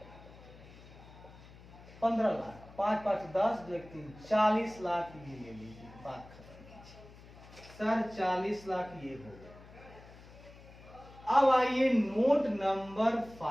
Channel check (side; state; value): left; noise; hum, 20 dB below the sound